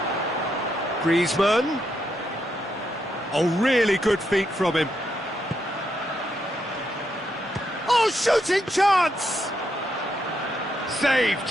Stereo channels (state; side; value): normal; both; correlation 0.80